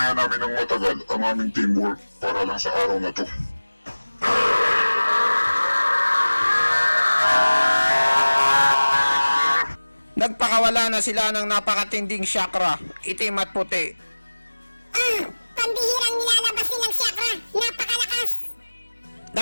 namin ng matagal ang aming teamwork para lang sa araw na to. Nagpakawala na sila ng napakatinding chakra, itim at puti. Pambihirang nilalabas nilang chakra. Napakalakas.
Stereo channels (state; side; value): inverted; both; correlation -1.00